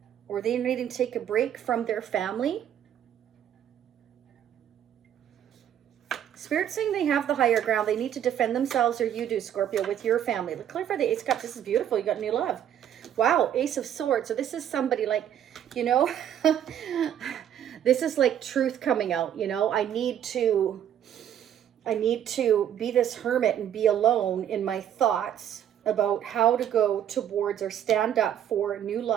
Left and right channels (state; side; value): quieter; left; 10.1 dB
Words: or they needing to take a break from their family. Spirit's saying they have the higher ground. They need to defend themselves, or you do, Scorpio, with your family. Let's clarify the Ace of Cups. This is beautiful. You got new love. Wow, Ace of Swords. So this is somebody like, you know, this is like truth coming out, you know. I need to be this hermit and be alone in my thoughts about how to go towards or stand up for new